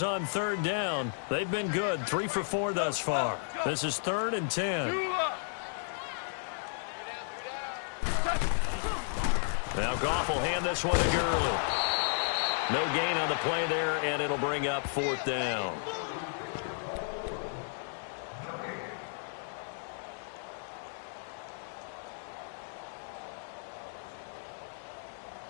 on third down. They've been good, 3 for 4 thus far. This is 3rd and 10. Now Goff will hand this one to Gurley. No gain on the play there, and it'll bring up 4th down.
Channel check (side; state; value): right; silent; 56 dB below the other